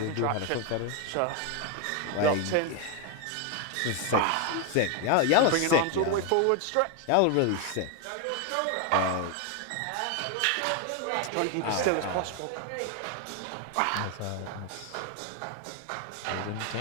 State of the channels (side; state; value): both; different; correlation 0.01